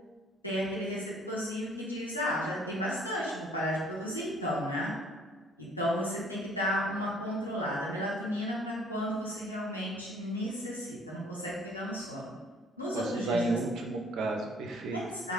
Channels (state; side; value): normal; both; correlation 0.57